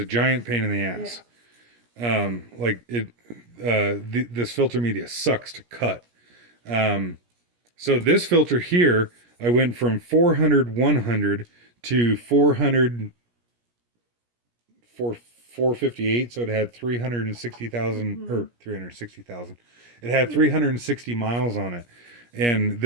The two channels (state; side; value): late; left; 17 ms